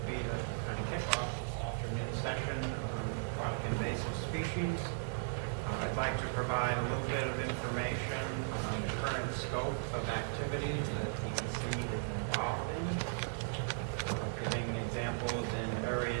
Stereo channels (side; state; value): left; silent; 53 dB below the other